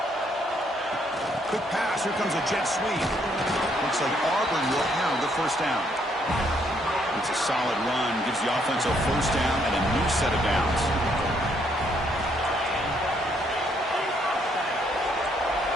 Quick pass. Here comes a jet sweep. Looks like Auburn will have the first down. It's a solid run. Gives the offense a first down and a new set of downs.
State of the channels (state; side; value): normal; both; correlation 0.70